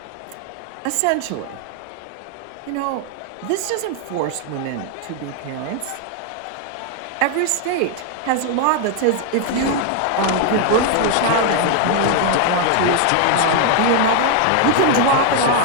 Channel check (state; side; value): different; both; correlation 0.00